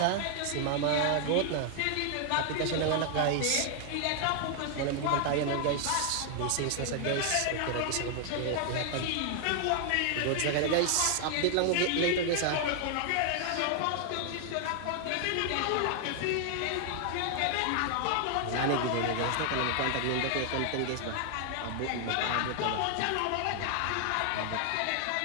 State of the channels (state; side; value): different; both; correlation 0.00